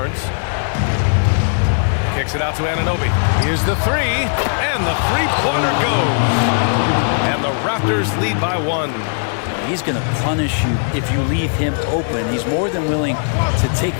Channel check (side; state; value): right; silent; 56 dB below the other